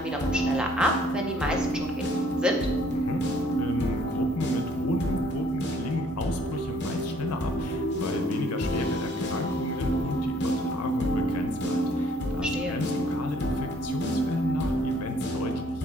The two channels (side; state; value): both; normal; correlation 0.61